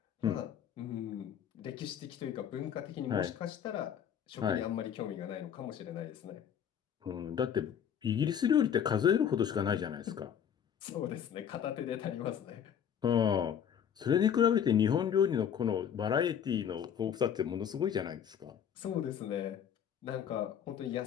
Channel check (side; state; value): right; quieter; 8.7 dB